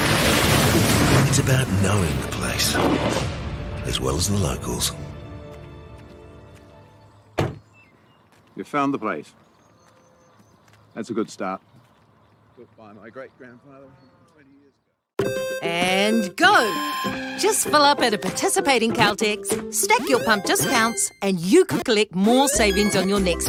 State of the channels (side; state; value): both; identical; correlation 1.00